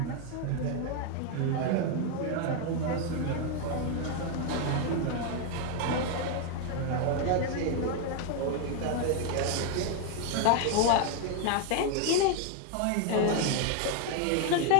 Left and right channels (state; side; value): different; both; correlation 0.01